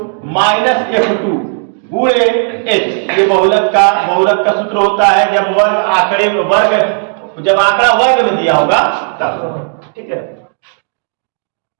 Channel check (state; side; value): silent; left; digital silence